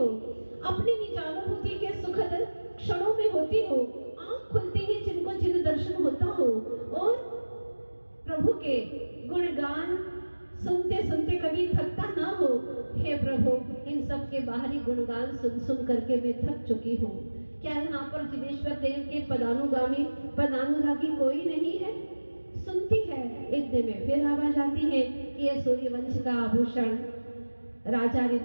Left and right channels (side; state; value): both; inverted; correlation -1.00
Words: अपनी निज अनुभूति के सुखद क्षणों में होती हो, आंख खुलते ही जिनको जिन दर्शन होता हो, और प्रभु के गुणगान सुनते सुनते कभी थकता ना हो। हे प्रभु, इन सब के बाहरी गुणगान सुन सुन करके मैं थक चुकी हूँ। क्या यहाँ पर जिनेश्वर देव के पदानुगामी पदानुरागी कोई नहीं है? सुनती है, इतने में फिर आवाज आती है कि यह सूर्यवंश का आभूषण राजा